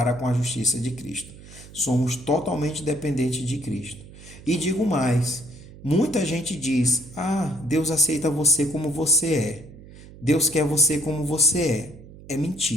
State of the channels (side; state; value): right; noise; hum, 18 dB below the sound